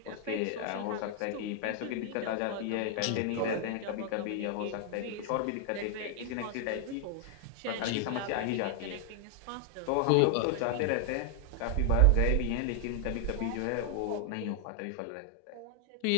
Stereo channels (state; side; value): different; both; correlation 0.00